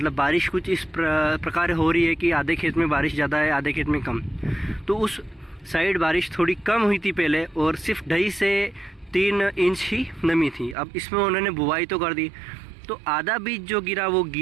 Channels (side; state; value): left; drops out; at 10.8 s